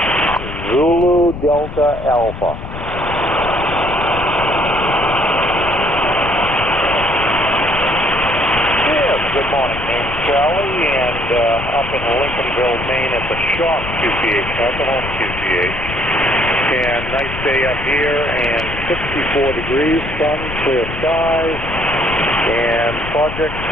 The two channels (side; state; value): left; noise; rumble, 9 dB below the sound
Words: Zulu Delta Alpha. Yes, good morning. Name's Charlie, and up in Lincolnville, Maine at the Shop QCH, not the home QCH. And nice day up here, and 64 degrees, sun, clear skies. And projects